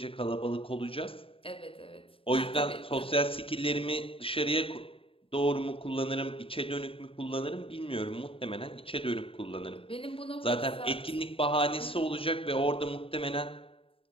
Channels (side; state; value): right; late; 0.27 ms